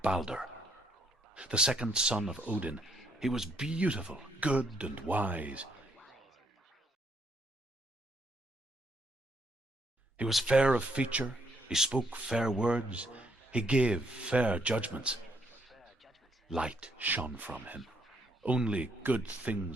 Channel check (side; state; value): both; normal; correlation 0.72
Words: Balder. The second son of Odin. He was beautiful, good, and wise. He was fair of feature, he spoke fair words, he gave fair judgments. Light shone from him. Only good